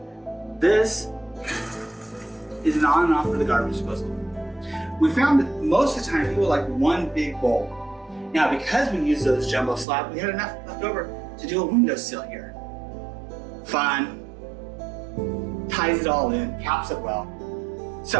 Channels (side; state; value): left; drops out; at 9.9 s